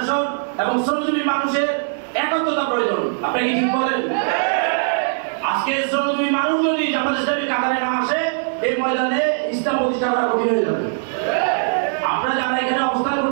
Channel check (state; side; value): silent; left; digital silence